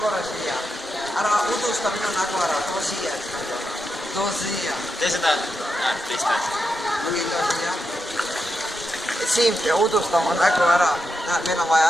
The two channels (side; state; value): both; normal; correlation 0.86